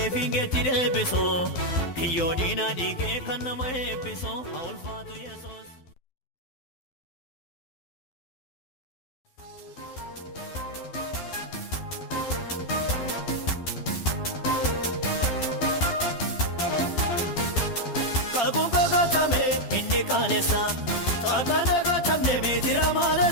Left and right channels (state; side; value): late; right; 12 ms